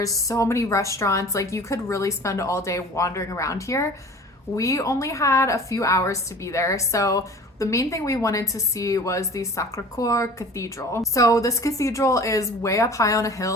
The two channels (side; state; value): both; normal; correlation 0.43